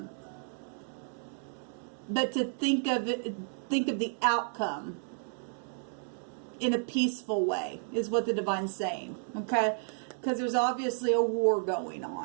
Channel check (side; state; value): left; silent; digital silence